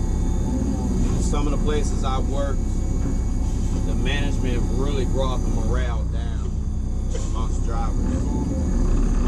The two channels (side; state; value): both; identical; correlation 1.00